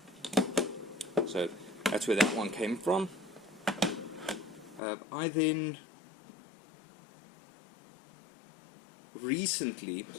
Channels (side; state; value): right; drops out; at 4.8 s